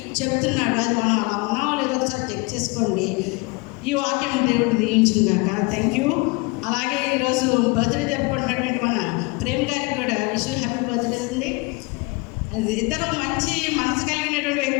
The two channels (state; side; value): quieter; right; 27.9 dB